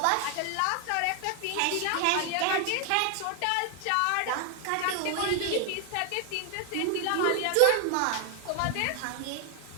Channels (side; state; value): both; different; correlation 0.00